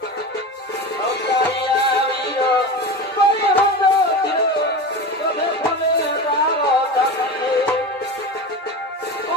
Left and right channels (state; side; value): normal; both; correlation 0.27